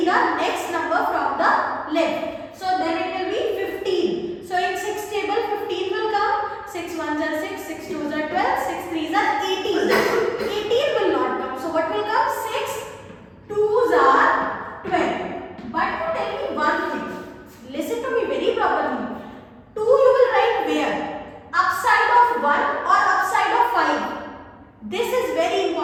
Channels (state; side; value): identical; both; correlation 1.00